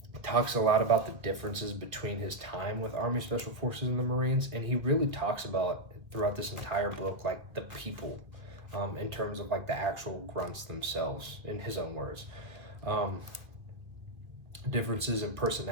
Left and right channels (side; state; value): left; late; 2.0 ms